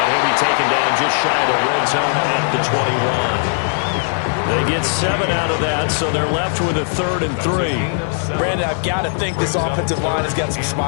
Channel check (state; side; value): silent; right; 66 dB below the other